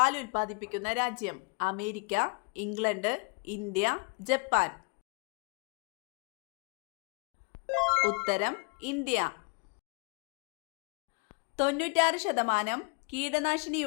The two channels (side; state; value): right; quieter; 33.0 dB